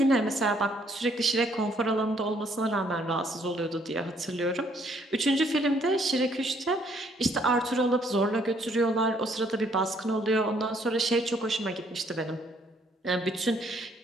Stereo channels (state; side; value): normal; both; correlation 0.66